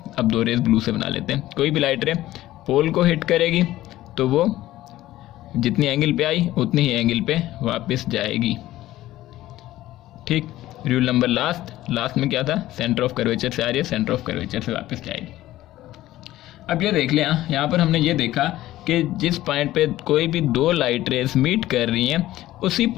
अब 2 रेस ब्लू से बना लेते हैं। कोई भी लाइट रे पोल को हिट करेगी तो वो जितनी एंगल पे आई उतनी ही एंगल पे वापस जाएगी। ठीक। रूल नंबर लास्ट में क्या था, सेंटर ऑफ कर्वेचर से आ रही है, सेंटर ऑफ कर्वेचर से वापस जाएगी। अब ये देख लें, यहाँ पर हमने ये देखा कि जिस पॉइंट पे कोई भी 2 लाइट रेस मीट कर रही हैं उसी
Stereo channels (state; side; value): quieter; right; 15.2 dB